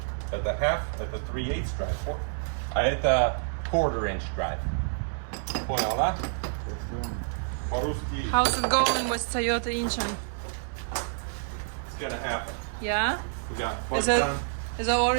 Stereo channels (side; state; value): left; silent; 59 dB below the other